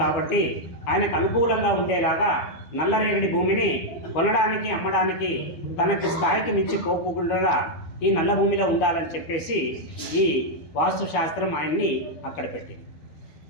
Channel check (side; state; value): right; late; 12 ms